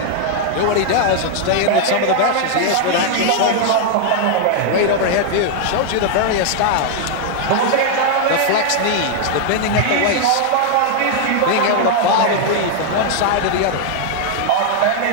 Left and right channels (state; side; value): different; both; correlation 0.00